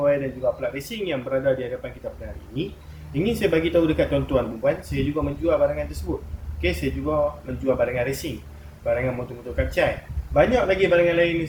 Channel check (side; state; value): both; identical; correlation 1.00